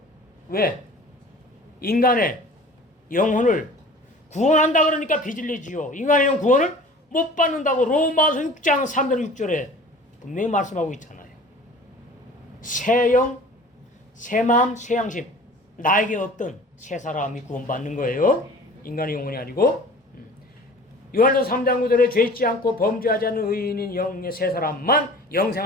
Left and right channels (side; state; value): both; normal; correlation 0.44